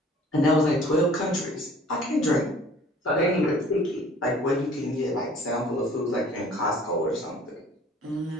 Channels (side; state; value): both; normal; correlation 0.51